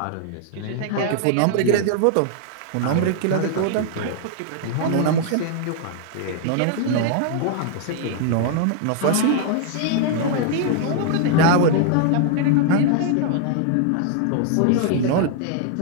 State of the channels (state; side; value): different; both; correlation 0.00